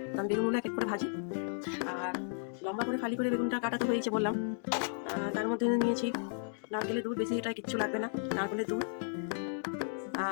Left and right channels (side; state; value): right; silent; digital silence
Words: তো আমি বেগুনগুলো এক এক করে ভাজি। আর লম্বা করে ফালি করে বেগুনটা কাটাতে হয়েছে বললাম। তার মধ্যে নিয়েছি নারকেলের দুধ, বেশি এটা কিচ্ছু লাগবে না, নারকেলের দুধ